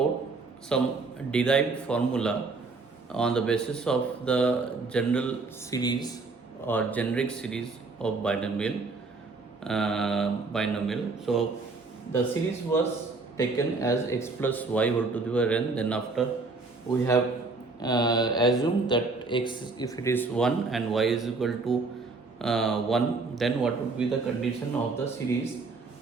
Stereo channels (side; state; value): left; quieter; 3.8 dB